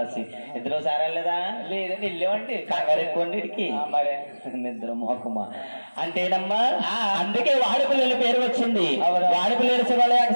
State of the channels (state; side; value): inverted; both; correlation -1.00